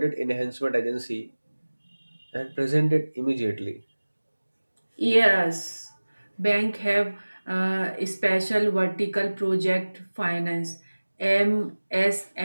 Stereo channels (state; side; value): inverted; both; correlation -1.00